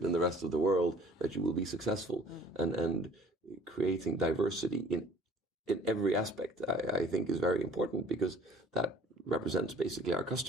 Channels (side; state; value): both; normal; correlation 0.50